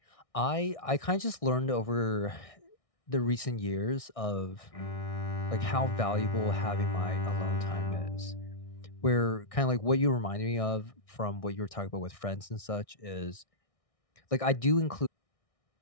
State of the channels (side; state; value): right; late; 1.6 ms